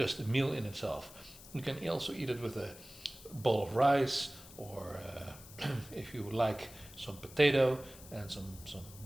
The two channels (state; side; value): noise; left; hiss, 18 dB below the sound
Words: a meal in itself. You can also eat it with a bowl of rice, or if you like, some potato and some